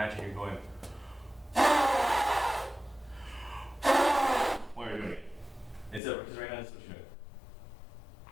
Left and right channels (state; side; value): drops out; right; at 6.0 s